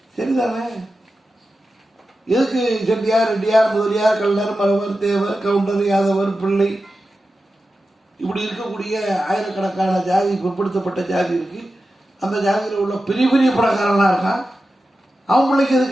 சரிதானே? எதுக்கு செட்டியார், ரெட்டியார், முதலியார், கல்லர், மரவர், தேவர், கவுண்டர், யாதவர், பிள்ளை, இப்படி இருக்கக்கூடிய ஆயிரக்கணக்கான ஜாதி, பிற்படுத்தப்பட்ட ஜாதி இருக்கு. அந்த ஜாதியில் உள்ள பெரிய பெரிய பணக்காரனா இருக்கான், அவன் பிள்ளைக்கு எது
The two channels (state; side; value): normal; both; correlation 0.92